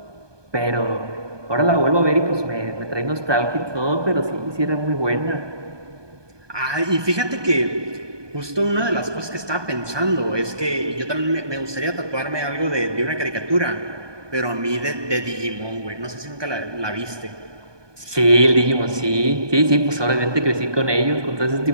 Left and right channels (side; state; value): left; late; 1.2 ms